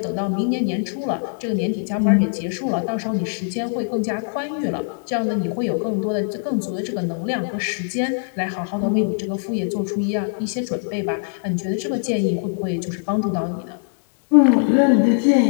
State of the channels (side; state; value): right; silent; digital silence